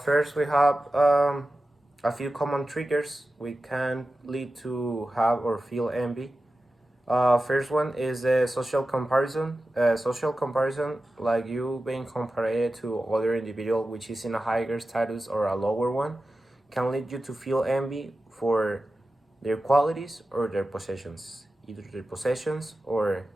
First, we have a few common triggers we can lead to have or feel envy. First one is social comparison. Social comparison, like you being compared to other individual which is in a higher status or a lower one, can lead you to feel envy for their qualities or their possessions, either their possessions or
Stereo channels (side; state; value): both; normal; correlation 0.93